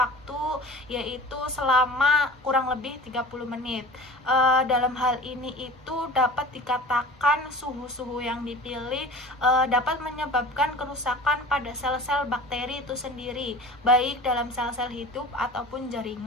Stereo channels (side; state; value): both; normal; correlation 0.39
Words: yaitu selama kurang lebih 30 menit. Dalam hal ini itu dapat dikatakan suhu-suhu yang dipilih dapat menyebabkan kerusakan pada sel-sel bakteri itu sendiri, baik dalam sel-sel hidup ataupun